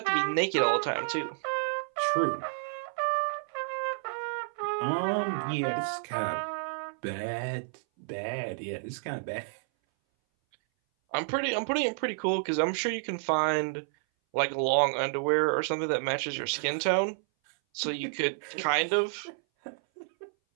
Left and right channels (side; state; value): left; silent; 58 dB below the other